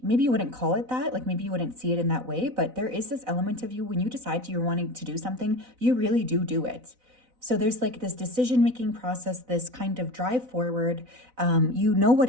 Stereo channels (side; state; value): left; late; 4.0 ms